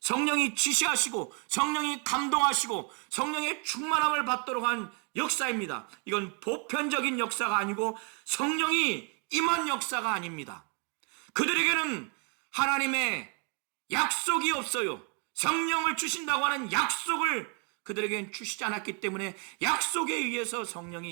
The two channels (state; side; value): quieter; left; 37.0 dB